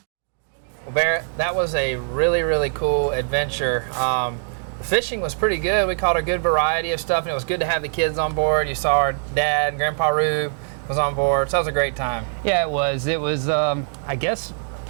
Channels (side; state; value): left; silent; digital silence